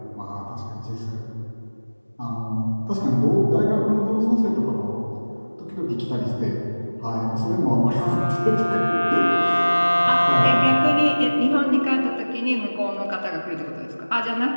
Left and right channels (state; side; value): inverted; both; correlation -1.00